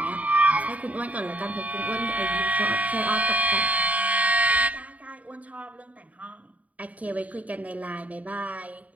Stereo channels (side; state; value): left; late; 0.070 ms